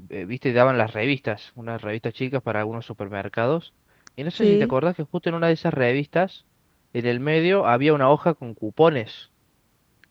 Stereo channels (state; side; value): identical; both; correlation 1.00